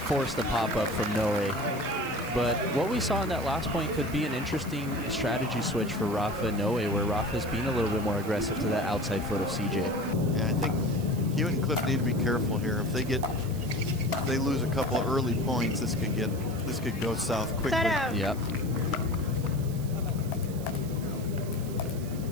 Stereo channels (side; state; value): right; noise; hiss, 17 dB below the sound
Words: the pop-up from Noe. But what we saw in that last point could be an interesting strategy switch for Rafa and Noe, where Rafa's being a little bit more aggressive to that outside foot of CJ. Yeah, I think Hewitt and Khlif need to be careful here. If they lose a couple of early points, this could go south quickly. Set out. Yep.